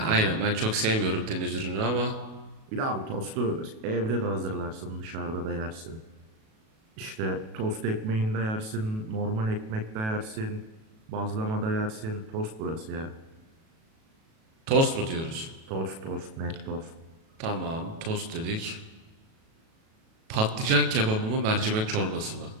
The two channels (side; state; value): left; late; 37 ms